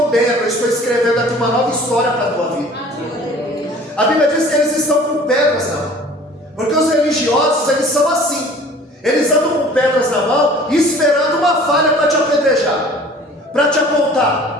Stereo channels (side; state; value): both; normal; correlation 0.48